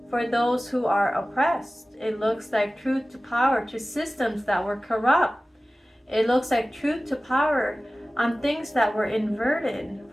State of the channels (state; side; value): normal; both; correlation 0.97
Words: for those who are oppressed. It looks like truth to power to systems that were corrupt. It looks like truth to power on things that were inverted